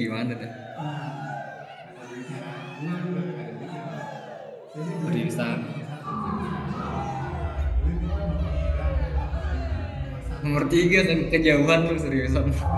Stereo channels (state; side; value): identical; both; correlation 1.00